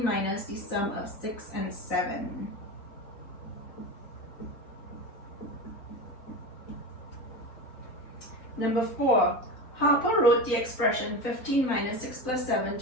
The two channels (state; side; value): late; right; 3.9 ms